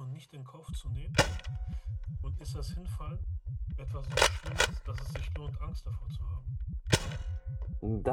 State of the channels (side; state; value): both; identical; correlation 1.00